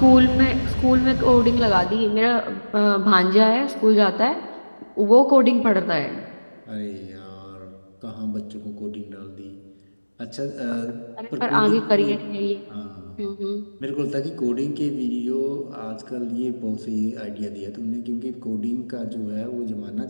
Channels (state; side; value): inverted; both; correlation -1.00